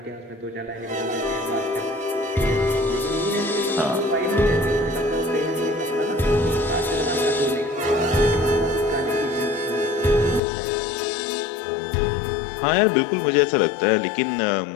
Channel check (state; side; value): drops out; right; at 10.4 s